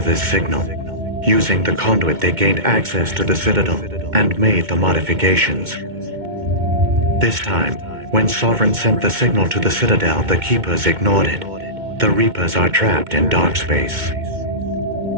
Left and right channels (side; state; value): left; late; 2.2 ms